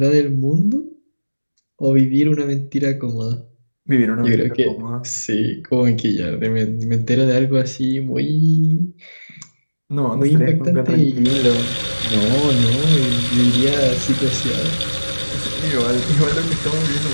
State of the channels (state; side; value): inverted; both; correlation -1.00